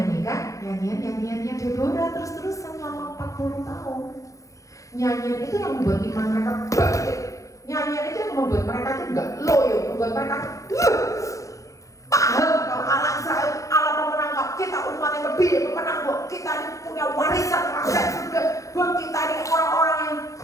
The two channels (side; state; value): right; late; 0.16 ms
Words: nyanyian-nyanyiannya Deborah terus-terusan selama 40 tahun. Nyanyian itu yang membuat iman mereka bangkit. Nyanyian itu yang membuat mereka itu enggak loyo, membuat mereka paham kalau Allah Israel, Allah pemenang kok, kita umat yang lebih pemenang kok, kita ini punya warisan rakyat surga, buat kita ini orang-orang yang